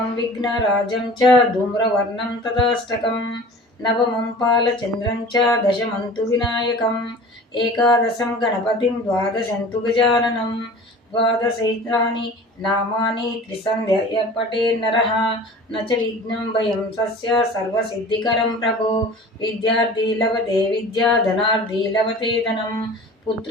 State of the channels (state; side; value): normal; both; correlation 0.41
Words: విఘ్నరాజం చ ధూమ్రవర్ణం తదాష్టకం నవమం పాలచంద్రం చ దశమంతు వినాయకం ఏకాదశం గణపతిం ద్వాదశంతు గజాననం ద్వాదశైతాని నామాని త్రిసంధ్య పఠేన్నరః న చ విఘ్నం భయం తస్య సర్వసిద్ధికరం ప్రభో. విద్యార్థి లభతే విద్యా ధనార్థి లభతే ధనం